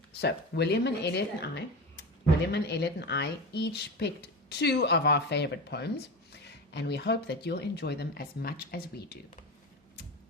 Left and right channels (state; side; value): normal; both; correlation 0.24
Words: So William and Elliot and I each picked two of our favorite poems, and we hope that you'll enjoy them as much as we do.